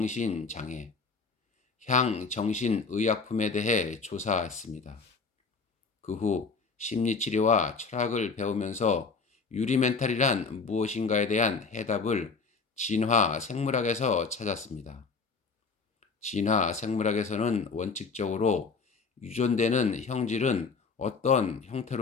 향정신의약품에 대해 조사했습니다. 그 후 심리치료와 철학을 배우면서 유리멘탈이란 무엇인가에 대한 해답을 진화 생물학에서 찾았습니다. 진화 생물학에서는 원칙적으로 유전되는 형질은 어떤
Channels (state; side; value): quieter; right; 4.7 dB